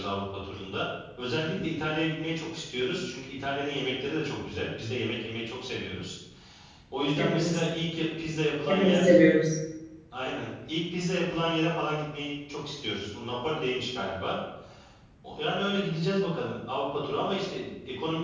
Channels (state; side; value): identical; both; correlation 1.00